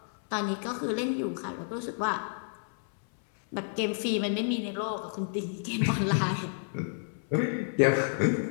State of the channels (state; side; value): silent; right; 58 dB below the other